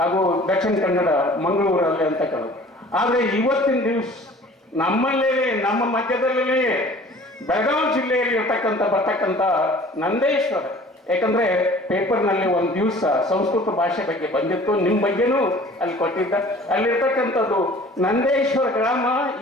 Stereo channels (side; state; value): both; normal; correlation 0.48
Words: ದಕ್ಷಿಣ ಕನ್ನಡ, ಮಂಗಳೂರಲ್ಲಿ ಅಂತಕ್ಕಂಥದ್ದು. ಆದರೆ ಇವತ್ತಿನ ದಿವಸ ನಮ್ಮಲ್ಲೇ, ನಮ್ಮ ಮಧ್ಯದಲ್ಲೇ ಬೆಳಗಾವಿ ಜಿಲ್ಲೆಯಲ್ಲಿ ಬರ್ತಕ್ಕಂಥ ನಂದೇಶ್ವರ, ಯಾಕಂದ್ರೆ ಪೇಪರ್ನಲ್ಲಿ ಒಂದು ದಿವಸ ಸಂಸ್ಕೃತ ಭಾಷೆ ಬಗ್ಗೆ ಬಂದಿತ್ತು, ನಿಮ್ಮ ಬಗ್ಗೆನೂ ಅಲ್ಲಿ ಕೊಟ್ಟಿದ್ದ. ಅಲ್ಲಿರ್ತಕ್ಕಂಥದ್ದು ನಂದೇಶ್ವರ ಗ್ರಾಮ